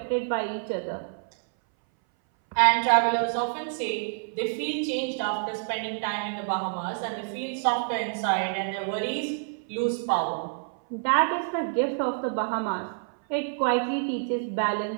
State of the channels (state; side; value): silent; left; 60 dB below the other